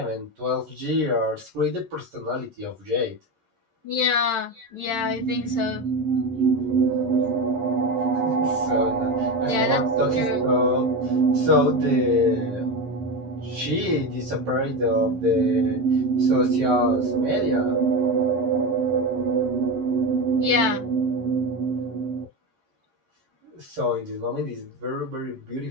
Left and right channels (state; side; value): late; left; 11 ms